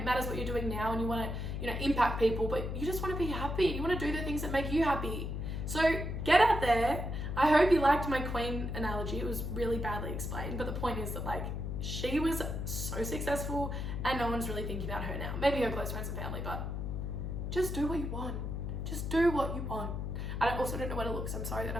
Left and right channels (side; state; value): left; noise; hum, 3 dB below the sound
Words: matters what you're doing now and you want to, you know, impact people, but you just want to be happy. You want to do the things that make you happy. So get out there. I hope you liked my Queen analogy. It was really badly explained, but the point is that, like, she was so successful and no one's really thinking about her now. Maybe her close friends and family, but just do what you want. Just do what you want. I also don't know where to look, so I'm sorry that